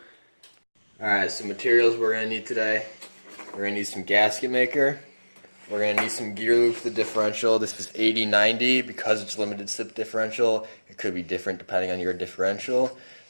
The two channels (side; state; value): both; inverted; correlation -1.00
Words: Alright, so materials we're going to need today. We're going to need some gasket maker. We're going to need some gear lube for the differential. This is 80/90 because it's limited slip differential. It could be different depending on your differential.